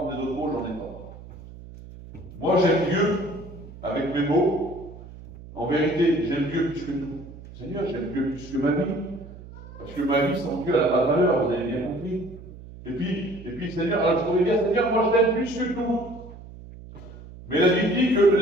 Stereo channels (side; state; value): right; noise; hum, 16 dB below the sound